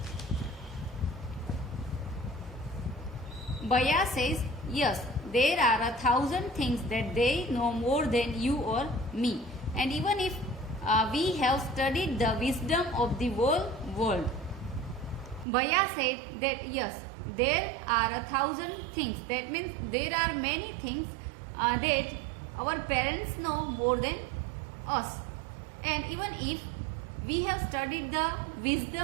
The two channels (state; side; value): drops out; left; at 15.5 s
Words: Bhaiya says, yes, there are 1,000 things that they know more than you or me. And even if we have studied the wisdom of the whole world. Bhaiya said that yes, there are 1,000 things. That means there are many things that our parents know more than us. And even if we have studied the